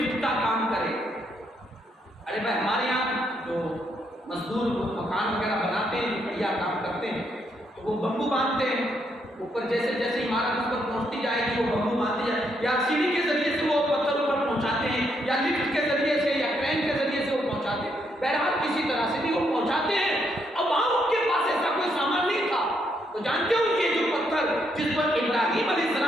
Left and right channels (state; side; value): normal; both; correlation 0.76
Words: کا کام کرے. ارے بھائی ہمارے یہاں جو مزدور مکان وغیرہ بناتے ہیں، بڑھیا کام کرتے ہیں، تو وہ بمبو باندھتے ہیں اوپر. جیسے جیسے عمارت اس پر پہنچتی جائے گی وہ بمبو باندھتے جائے، یا سیڑھی کے ذریعے سے وہ پتھر اوپر پہنچاتے ہیں، یا لفٹ کے ذریعے سے یا کرین کے ذریعے سے وہ پہنچاتے ہیں. بہرحال کسی طرح سے بھی وہ پہنچاتے ہیں. اب وہاں ان کے پاس ایسا کوئی سامان نہیں تھا، تو جانتے ہو یہ جو پتھر جس پر ابراہیم علیہ